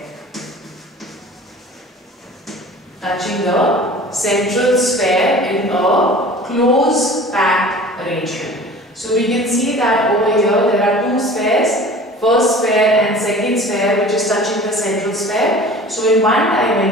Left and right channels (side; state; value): both; normal; correlation 0.42